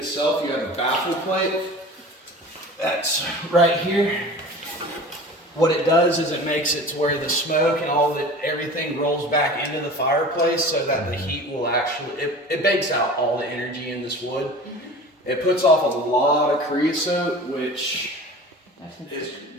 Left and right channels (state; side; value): normal; both; correlation 0.38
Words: you have a baffle plate. That's right here. What it does is it makes it to where the smoke and everything rolls back into the fireplace so that the heat will it bakes out all the energy in this wood. It puts off a lot of creosote, which